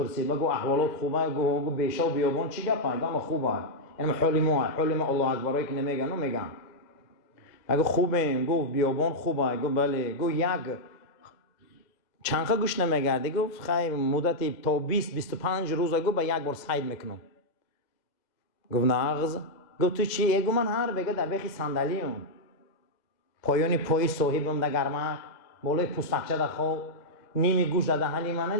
بگو احوالات خوبه، گو بیشا و بیابان چی گپه؟ گم خوبه. یعنی حالی ما الله اکبرایی که نمیگن و میگن. اگه خوبه گفت بیابان خوبه، گفت بله، گفت یک چنخه گوش نمیگرده، گفت خیلی مدت تا 20-25 روز گفت با یک بار سعی میکنم. گفت ناغز، گفت تو چی؟ گفت من هر بگه در بخی صندلیم پایانی پای صاحبم در گرمک بالای پوستکچه در خواب نیمی گوش در دهنی منه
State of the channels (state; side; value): late; right; 2.0 ms